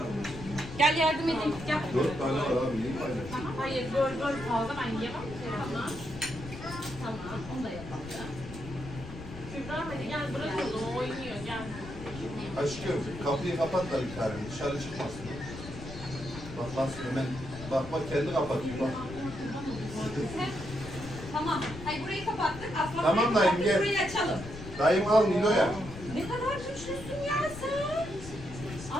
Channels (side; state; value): left; noise; rumble, 12 dB below the sound